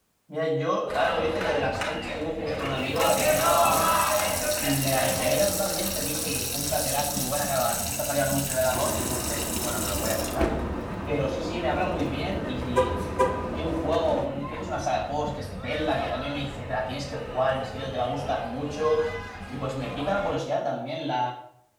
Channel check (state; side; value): identical; both; correlation 1.00